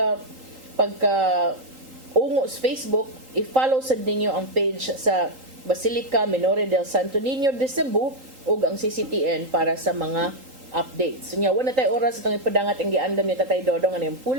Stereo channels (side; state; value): left; late; 3.8 ms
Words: ungo sa Facebook, i-follow sad ninyo ang page sa Basilica Minore del Santo Niño de Cebu ug ang CCTN para sa mga updates. So nya wala tay oras itong ipadangat ang giandam ni Tatay Dodong ano yung